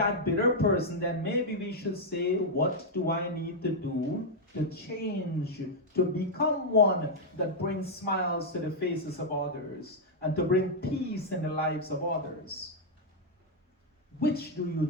bitter person, then maybe we should say, what do I need to do to change, to become one that brings smiles to the faces of others and to bring peace in the lives of others? Which do you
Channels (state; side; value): normal; both; correlation -0.03